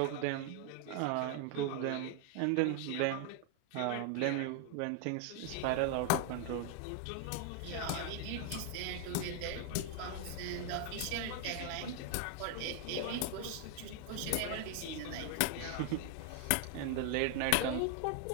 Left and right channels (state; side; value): different; both; correlation 0.00